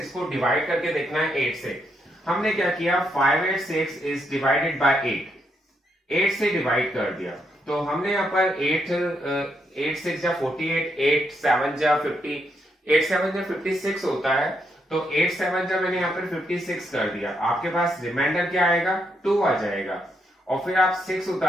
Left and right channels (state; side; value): normal; both; correlation 0.78